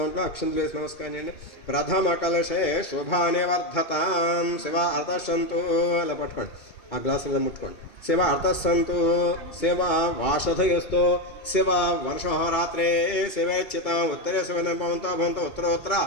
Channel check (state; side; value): late; right; 2.2 ms